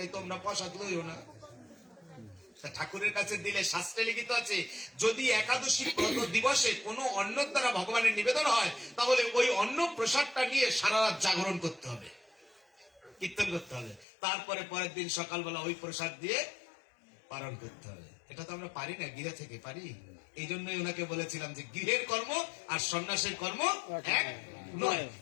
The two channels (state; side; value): drops out; right; at 14.1 s